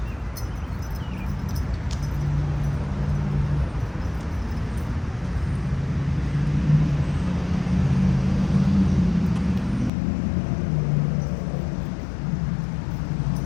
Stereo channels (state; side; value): drops out; right; at 9.9 s